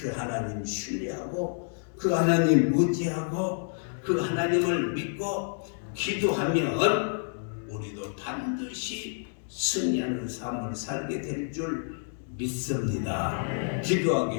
하나님 신뢰하고 그 하나님 의지하고 그 하나님을 믿고 기도하면 우리도 반드시 승리하는 삶을 살게 될 줄 믿습니다.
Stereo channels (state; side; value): silent; right; digital silence